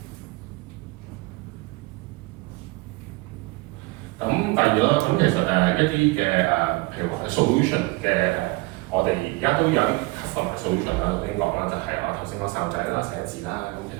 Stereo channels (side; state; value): left; quieter; 24.2 dB